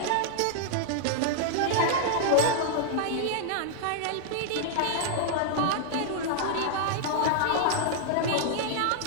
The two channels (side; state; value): both; different; correlation -0.01